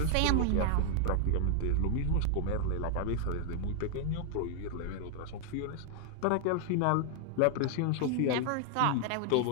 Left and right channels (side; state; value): both; different; correlation 0.00